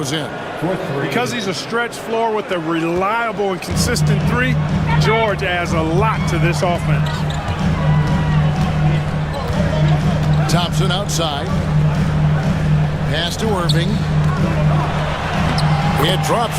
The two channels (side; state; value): both; identical; correlation 1.00